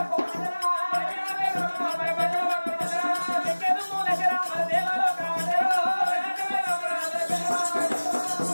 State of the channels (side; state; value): both; inverted; correlation -1.00